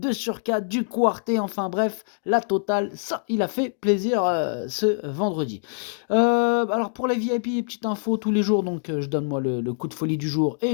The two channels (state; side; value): silent; right; 61 dB below the other